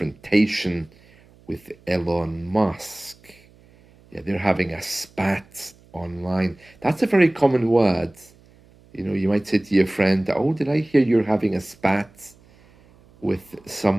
with Elon Musk. Yeah, they're having a spat online. That's a very common word. You know, you might say to your friend, oh, did I hear you're having a spat with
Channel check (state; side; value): noise; right; hum, 28 dB below the sound